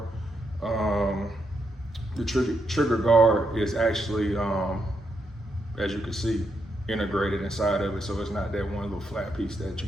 lure. The trigger guard is actually, as you can see, integrated inside of it, so it's not that one little flat piece that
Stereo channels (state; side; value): normal; both; correlation 0.81